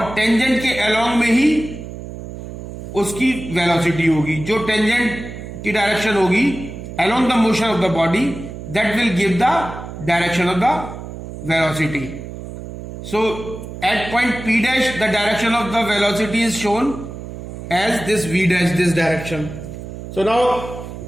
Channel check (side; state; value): right; noise; hum, 10 dB below the sound